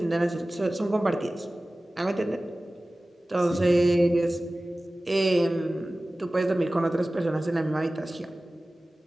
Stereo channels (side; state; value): both; normal; correlation 0.97